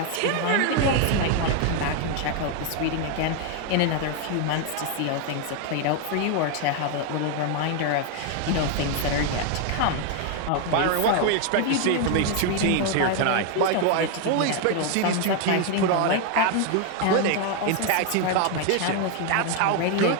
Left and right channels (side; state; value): both; different; correlation 0.01